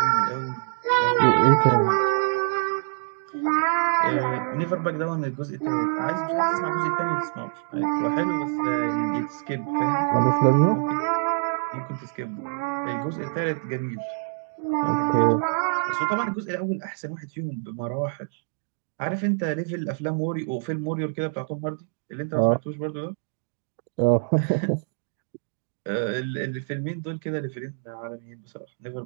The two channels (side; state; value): left; silent; digital silence